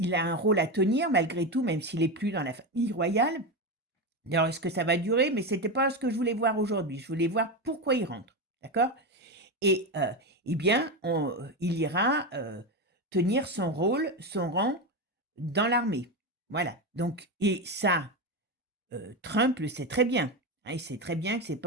a un rôle à tenir malgré tout, même s'il est plus dans la famille royale, Alors, est-ce que ça va durer? Mais c'était pas ce que je voulais voir aujourd'hui. Je voulais voir pourquoi il rentre, d'accord? Et eh bien, il ira, tenir son rôle, son rang dans l'armée. Voilà, donc et ça, Trump le sait très bien, hein. Il sait très bien que c'est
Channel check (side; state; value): both; normal; correlation 0.15